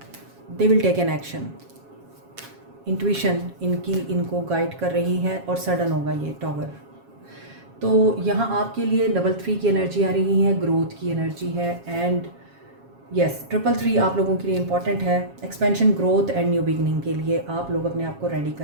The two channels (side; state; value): left; late; 7.3 ms